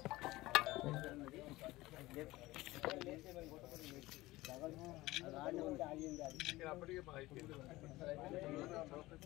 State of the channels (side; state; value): right; quieter; 18.8 dB